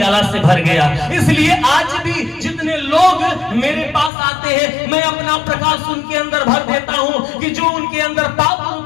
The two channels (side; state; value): right; drops out; at 4.1 s